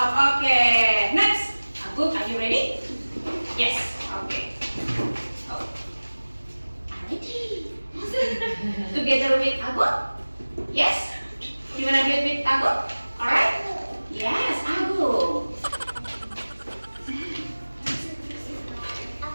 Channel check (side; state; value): both; inverted; correlation -1.00